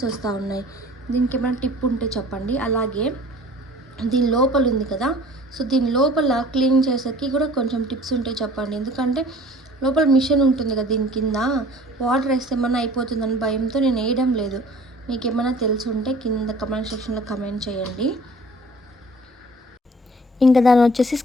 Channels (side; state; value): both; normal; correlation 0.48